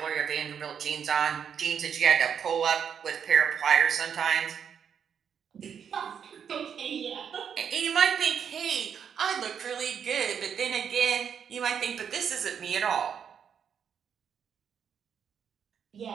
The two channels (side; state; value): left; quieter; 7.7 dB